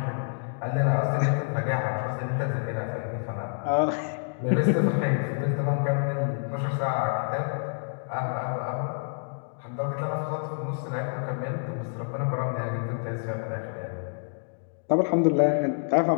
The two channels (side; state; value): right; silent; digital silence